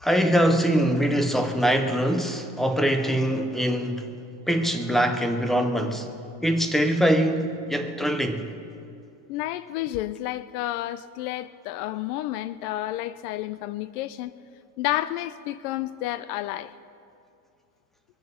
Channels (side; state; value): both; normal; correlation 0.68